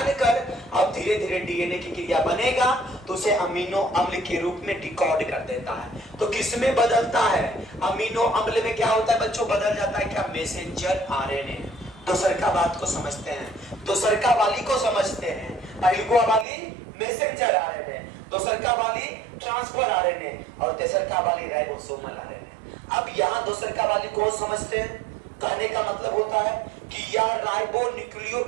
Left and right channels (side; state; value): left; drops out; at 16.4 s